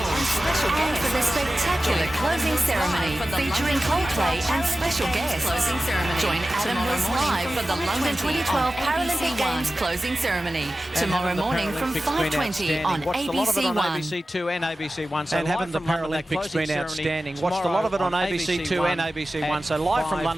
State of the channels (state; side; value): normal; both; correlation 0.95